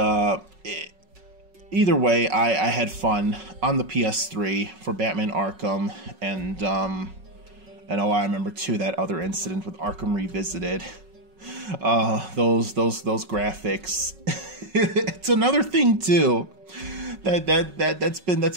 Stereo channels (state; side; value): late; left; 5.4 ms